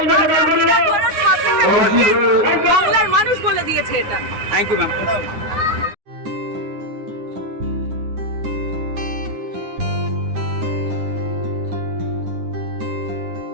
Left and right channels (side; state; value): left; late; 9.8 ms